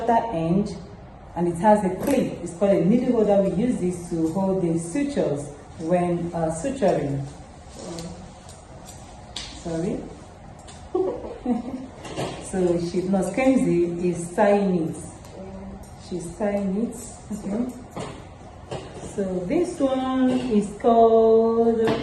end and it has a clip. It's called a needle holder. We use this to hold the sutures when suturing. Sorry. So Nurse Kemsey is tying it. She's tying it. Okay. So this one is called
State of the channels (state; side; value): identical; both; correlation 1.00